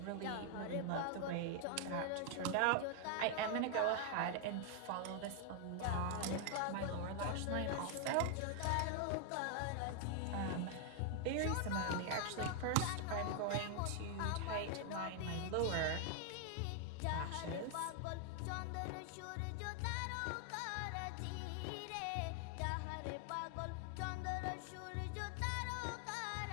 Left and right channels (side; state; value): both; different; correlation 0.00